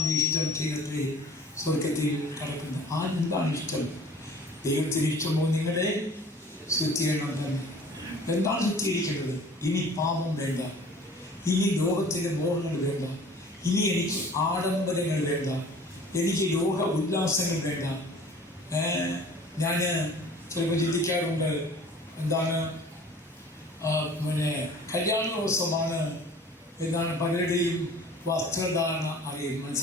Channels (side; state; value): both; normal; correlation 0.47